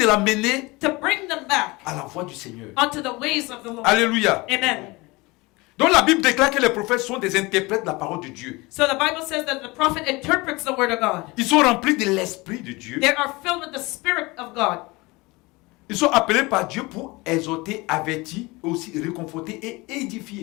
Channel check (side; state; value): right; quieter; 23.5 dB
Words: on, l'amener to bring them back à la voie du Seigneur. onto the ways of the Lord. Alléluia. Amen. Donc la Bible déclare que les prophètes sont des interprètes de la parole de Dieu. So the Bible says that the prophet interprets the word of God. Ils sont remplis de l'Esprit de Dieu. They are filled with the Spirit of God. Ils sont appelés par Dieu pour exhorter, avertir, aussi réconforter et